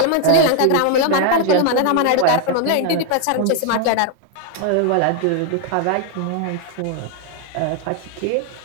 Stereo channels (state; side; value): different; both; correlation 0.00